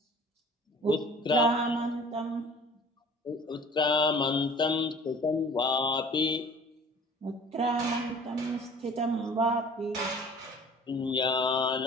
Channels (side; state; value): both; normal; correlation 0.47